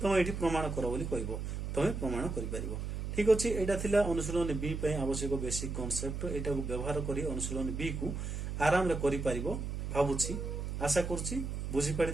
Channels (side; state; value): right; noise; hum, 4 dB below the sound